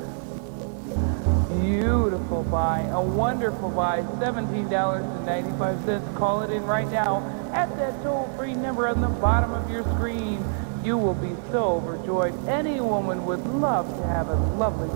beautiful buy, a wonderful buy, $17.95. Call it in right now at that toll-free number on the bottom of your screen. You will be so overjoyed. Any woman would love to have a lovely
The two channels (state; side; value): silent; left; digital silence